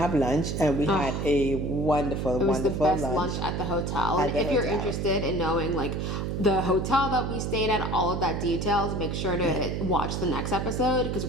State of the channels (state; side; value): noise; right; hum, 2 dB below the sound